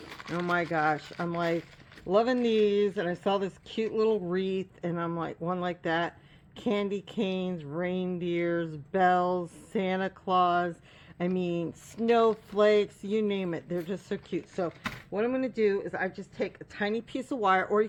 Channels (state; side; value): identical; both; correlation 1.00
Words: Oh my gosh, I'm like loving these, and I saw this cute little wreath, and I'm like, one like that. Candy canes, reindeers, bells, Santa Claus, I mean, snowflakes, you name it. They're just so cute. So what I'm going to do is I just take a tiny piece of wire, or you